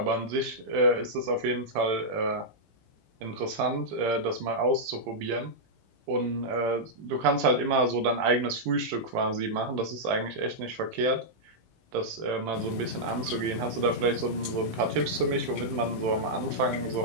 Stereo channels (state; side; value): late; left; 18 ms